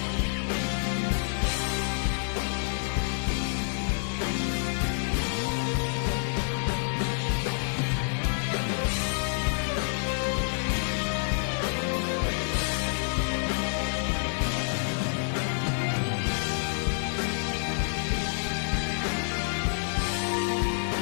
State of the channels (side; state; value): right; silent; 59 dB below the other